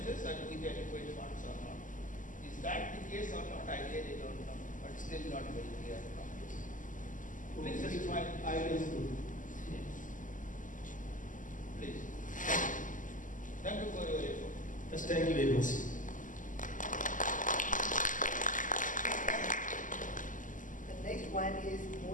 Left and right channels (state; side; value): late; right; 0.38 ms